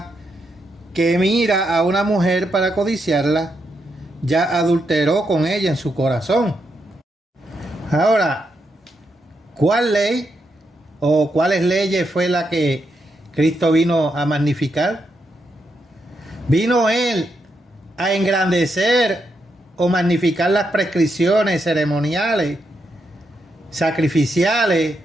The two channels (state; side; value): normal; both; correlation 0.82